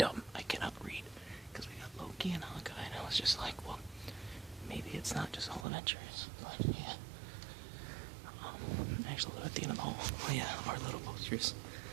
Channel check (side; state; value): left; drops out; at 5.7 s